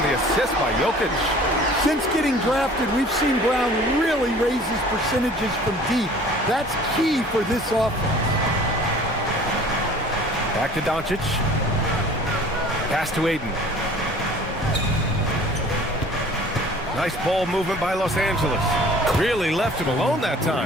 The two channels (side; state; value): both; normal; correlation 0.48